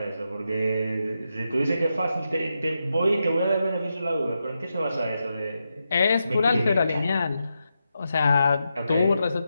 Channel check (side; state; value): both; inverted; correlation -0.87